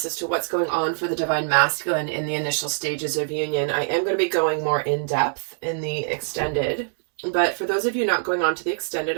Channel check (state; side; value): silent; left; digital silence